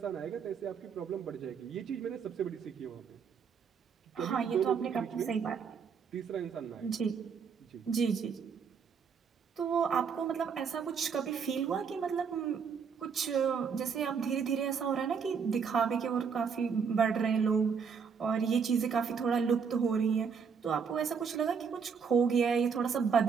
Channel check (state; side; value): quieter; left; 6.3 dB